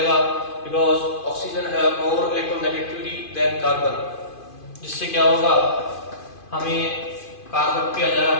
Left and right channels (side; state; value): right; late; 2.5 ms